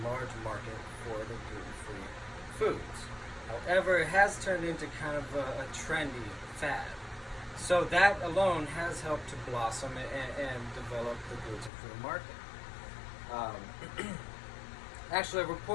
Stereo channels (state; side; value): drops out; right; at 11.7 s